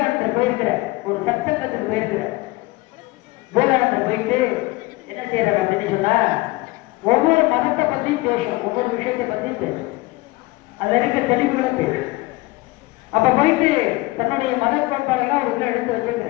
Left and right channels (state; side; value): quieter; right; 21.3 dB